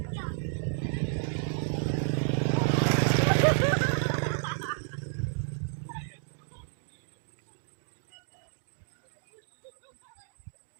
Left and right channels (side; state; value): left; silent; digital silence